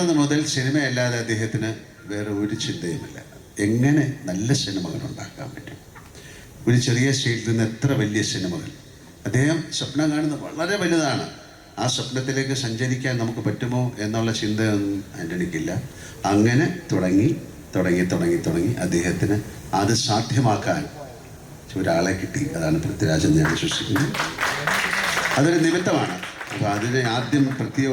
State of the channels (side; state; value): both; identical; correlation 1.00